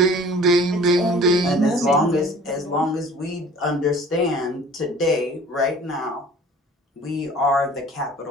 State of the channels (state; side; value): normal; both; correlation 0.48